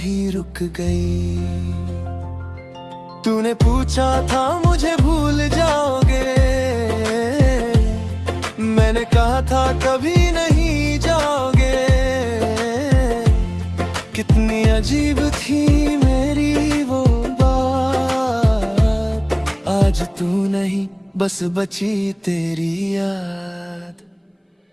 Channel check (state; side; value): identical; both; correlation 1.00